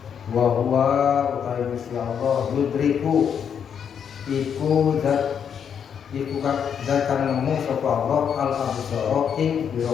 Wa huwa utawi Gusti Allah yudriku iku zat kang nemu sapa Allah al absaru ing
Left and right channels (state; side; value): quieter; right; 7.8 dB